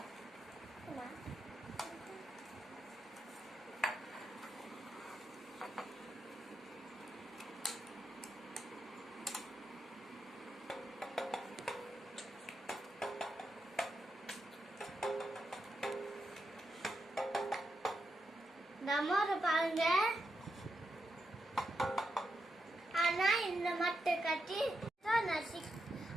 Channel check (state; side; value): normal; both; correlation 0.84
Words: நம்மளை பாருங்க. ஆனா இந்த மட்டை கட்டி நான்